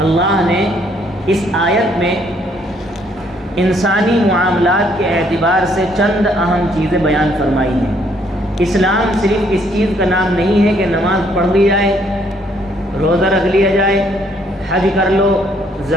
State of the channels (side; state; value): both; normal; correlation 0.67